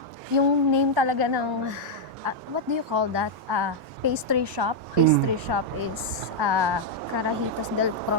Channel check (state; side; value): normal; both; correlation -0.02